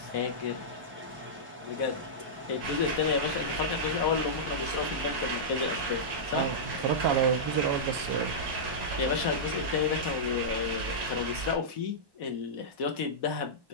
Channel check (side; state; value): left; late; 1.1 ms